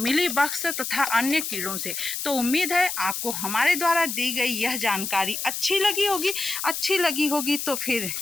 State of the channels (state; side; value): noise; left; hiss, 4 dB below the sound